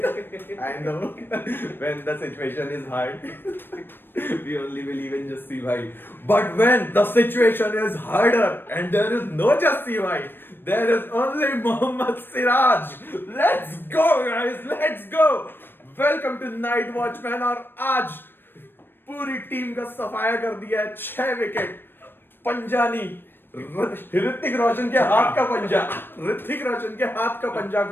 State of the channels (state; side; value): late; right; 0.097 ms